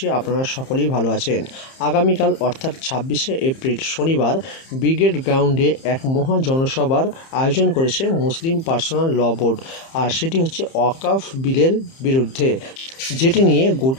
আপনারা সকলেই ভালো আছেন। আগামীকাল অর্থাৎ 26শে এপ্রিল শনিবার ব্রিগেড গ্রাউন্ডে এক মহা জনসভার আয়োজন করেছে মুসলিম পার্সোনাল ল বোর্ড। আর সেটি হচ্ছে ওয়াকফ বিলের বিরুদ্ধে, যেটি নিয়ে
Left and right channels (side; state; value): right; late; 30 ms